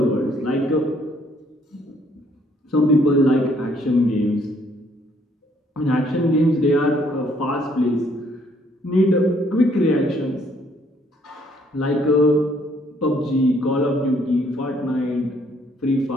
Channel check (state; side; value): normal; both; correlation 0.65